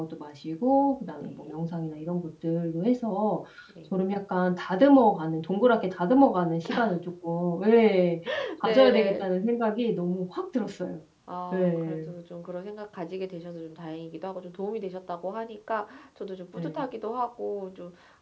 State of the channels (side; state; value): both; identical; correlation 1.00